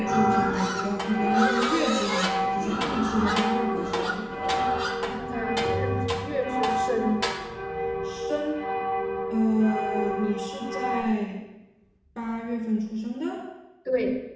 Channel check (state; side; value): identical; both; correlation 1.00